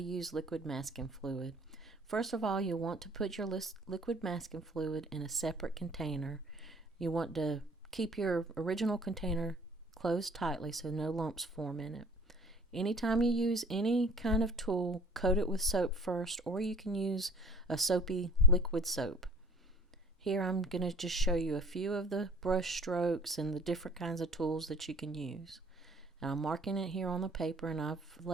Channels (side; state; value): both; normal; correlation 0.49